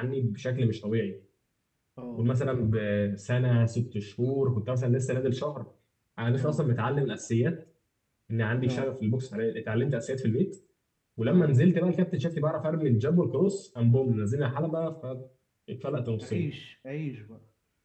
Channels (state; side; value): identical; both; correlation 1.00